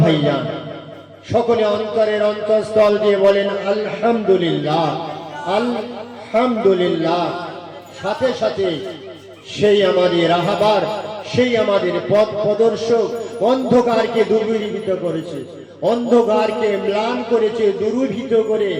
ভাইজান, সকলে অন্তরের অন্তঃস্থল দিয়ে বলেন আলহামদুলিল্লাহ, আলহামদুলিল্লাহ। সাথে সাথে সেই আমাদের রাহাবার, সেই আমাদের পথ প্রদর্শক, অন্ধকারকে দূরীভূত করেছে, অন্ধকারকে ম্লান করেছে, দূরীভূত করে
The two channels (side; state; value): both; identical; correlation 1.00